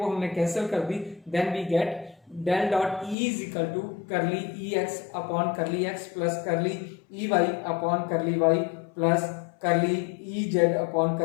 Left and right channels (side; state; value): right; drops out; at 3.2 s